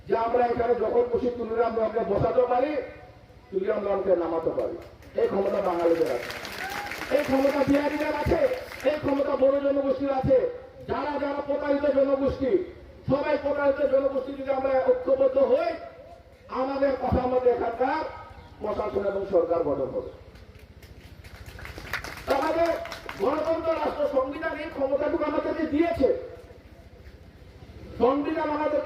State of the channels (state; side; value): identical; both; correlation 1.00